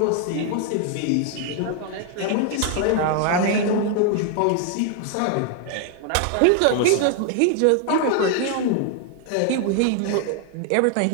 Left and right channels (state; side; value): different; both; correlation 0.00